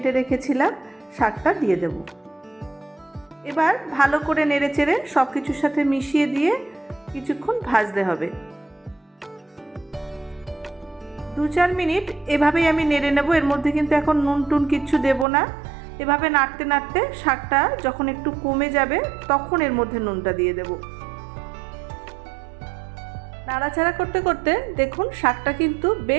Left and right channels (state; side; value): drops out; left; at 15.2 s